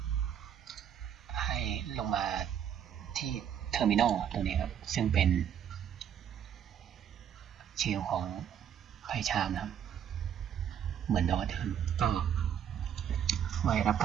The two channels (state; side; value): quieter; left; 9.1 dB